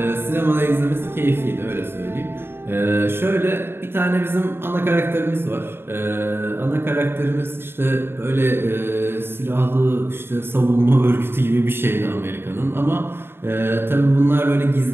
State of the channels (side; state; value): left; late; 0.11 ms